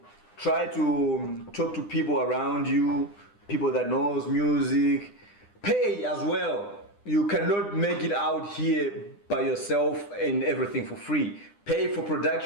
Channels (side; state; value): right; late; 9.9 ms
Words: try to talk to people around you, people that knows music. Pay as well. You cannot make it out here by yourself and everything for free. Pay for